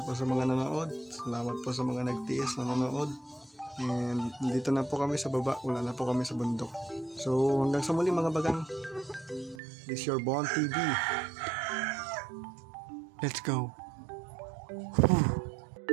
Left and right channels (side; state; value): left; drops out; at 9.6 s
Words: po sa mga nanood. Salamat po sa mga nagtiis na nanood. And dito na po kami sa baba. Wala na po kami sa bundok. So hanggang sa muli mga bagang. This is your Bon TV. Let's go. Whew.